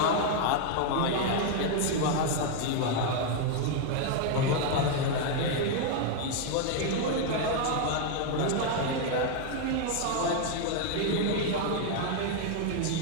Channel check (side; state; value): both; different; correlation 0.00